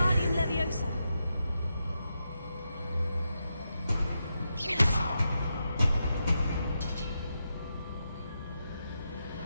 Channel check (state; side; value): inverted; both; correlation -0.86